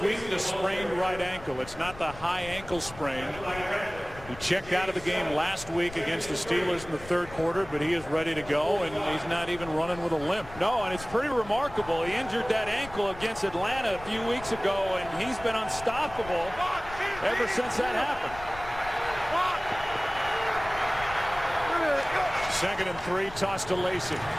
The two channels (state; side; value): noise; left; rumble, 15 dB below the sound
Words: a sprained right ankle. It's not the high ankle sprain. He checked out of the game last week against the Steelers in the third quarter, but he is ready to go, and he's not even running with a limp. No, and it's pretty remarkable. He injured that ankle against Atlanta a few weeks ago, and he's been unstoppable ever since that happened. Second and 3, toss to Lacy.